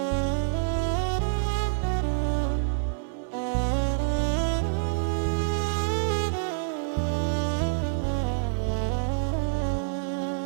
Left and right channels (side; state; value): left; silent; 60 dB below the other